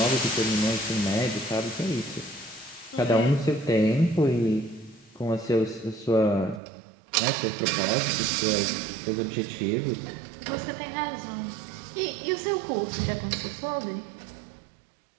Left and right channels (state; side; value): drops out; left; at 6.6 s